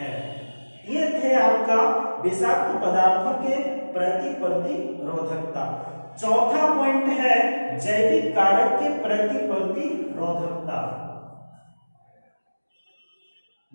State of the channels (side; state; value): both; inverted; correlation -1.00